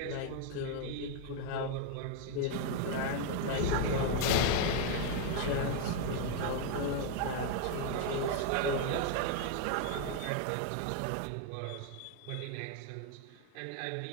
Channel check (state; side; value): different; both; correlation 0.01